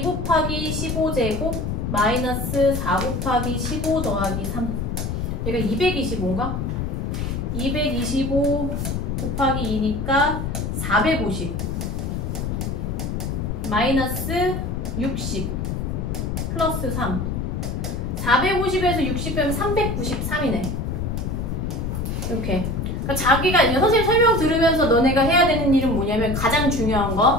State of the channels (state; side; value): noise; left; rumble, 2 dB below the sound